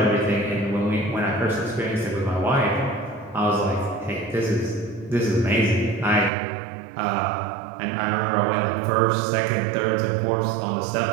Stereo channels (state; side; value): drops out; left; at 6.3 s